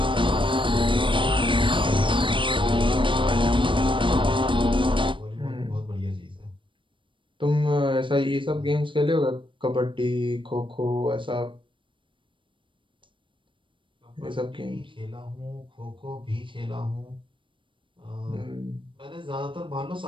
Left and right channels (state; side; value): late; left; 0.24 ms